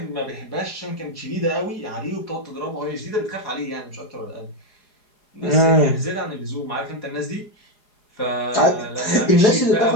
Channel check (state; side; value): late; right; 4.8 ms